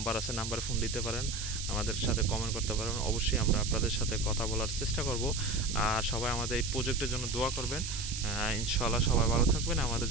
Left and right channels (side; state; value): right; noise; hiss, 6 dB below the sound